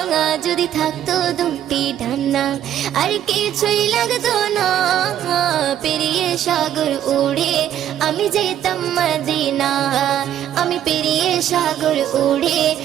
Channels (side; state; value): left; quieter; 11.0 dB